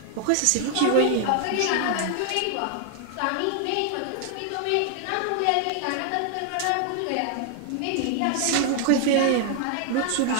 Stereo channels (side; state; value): both; different; correlation 0.00